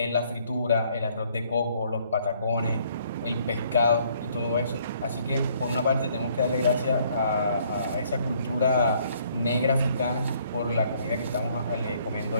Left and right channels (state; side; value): inverted; both; correlation -0.64